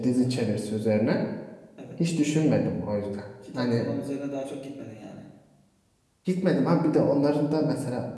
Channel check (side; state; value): both; identical; correlation 1.00